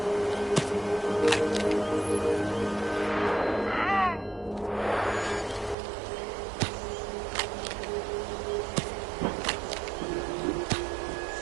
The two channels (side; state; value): left; drops out; at 5.8 s